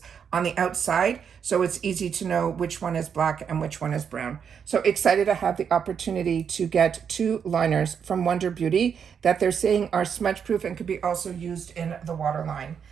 on the outside, so it's easy to know which one is black and which one is brown. So excited to have the opportunity to get two liners from Wonder Beauty that they're saying are smudge proof and could be also used in the waterline.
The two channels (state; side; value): quieter; left; 7.3 dB